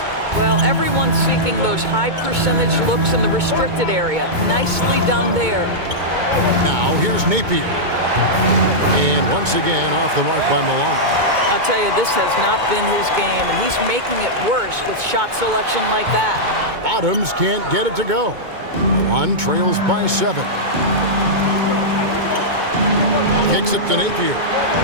Well, everyone's seeking those high percentage looks in the restricted area. Nicely done there. Now here's Napier. And once again off the mark by Milan. I'll tell you, this has not been his game, and he's making it worse with shot selection like that. Bottoms can't get it to go. Milan trails by 7. Kicks it to Napier.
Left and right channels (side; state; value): left; late; 2.2 ms